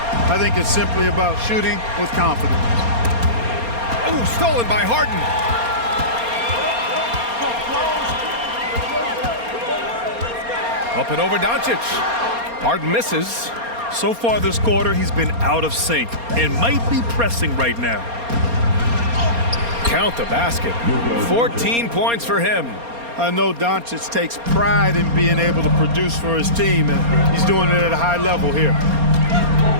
I think it's simply about shooting with confidence. Ooh, stolen by Harden. Up and over Doncic. Harden misses. So far this quarter, he's been out of sync and might be pressing right now. Count the basket. 14 points for him. I know Doncic takes pride in being able to produce for his team, and he's doing it at a high level here.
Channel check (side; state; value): left; late; 4.3 ms